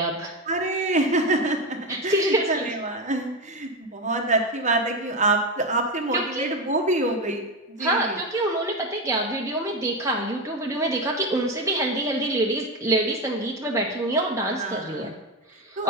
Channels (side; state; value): both; normal; correlation 0.14